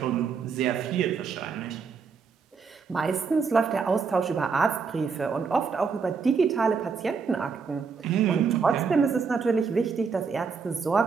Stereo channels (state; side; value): quieter; left; 5.4 dB